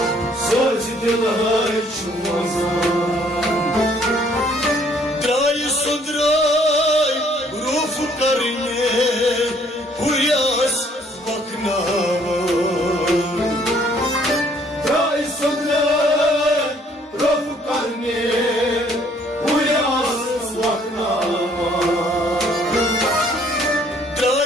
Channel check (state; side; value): normal; both; correlation 0.62